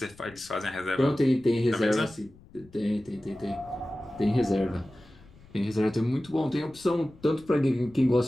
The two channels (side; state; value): left; noise; rumble, 24 dB below the sound